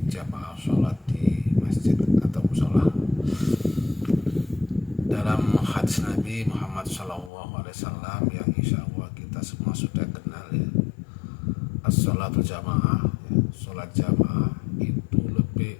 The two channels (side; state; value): right; drops out; at 7.3 s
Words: jamaah sholat di masjid atau musola. Dalam hadis Nabi Muhammad SAW yang insya Allah kita semua sudah kenal ya, as-sholatul jamaah, sholat jamaah itu